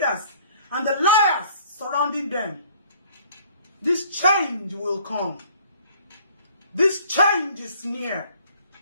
and the liars surrounding them, this change will come. This change is near.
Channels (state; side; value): inverted; both; correlation -0.56